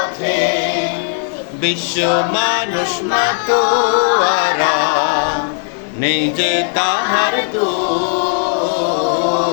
বিশ্ব মানুষ মাতোয়ারা নিজে তাহার তুল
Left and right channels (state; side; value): silent; right; 60 dB below the other